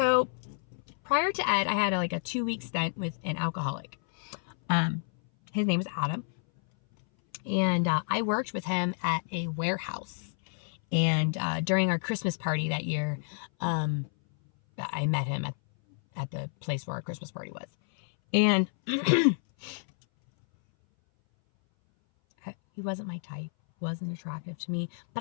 prior to Ed, I had like a 2-week stint with an alcoholic. His name is Adam. And I worked with him at a warehouse. And during our Christmas party that year, I met him at the place where our Christmas party was. And he wasn't my type, wasn't attractive to me.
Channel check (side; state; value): right; silent; 58 dB below the other